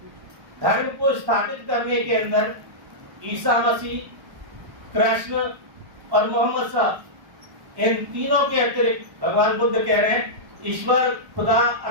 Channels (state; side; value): late; left; 1.1 ms